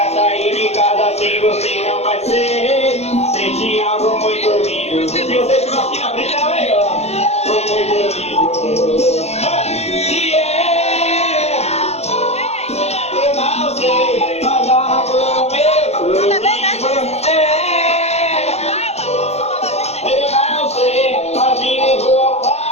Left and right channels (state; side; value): late; right; 0.31 ms